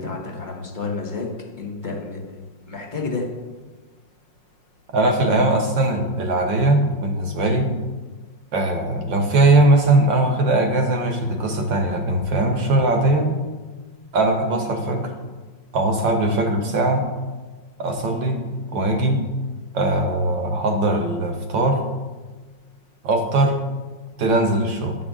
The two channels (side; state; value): left; late; 5.5 ms